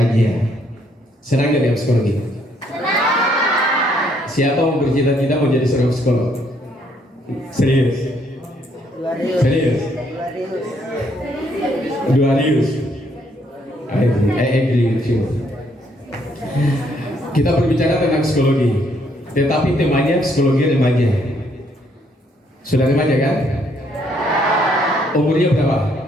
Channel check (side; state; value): both; normal; correlation 0.70